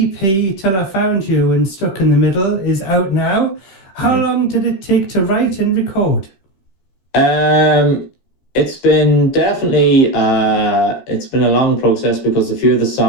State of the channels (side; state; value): right; late; 15 ms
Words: Till I Found You and Stuck in the Middle, is out now. How long did it take to write and record? It's been definitely it's been a long process because a few of the